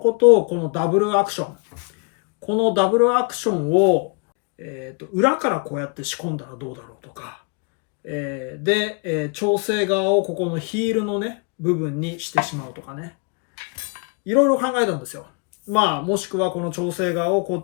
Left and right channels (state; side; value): quieter; right; 36.8 dB